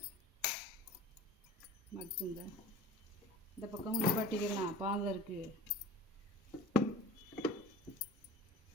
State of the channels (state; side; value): normal; both; correlation 0.38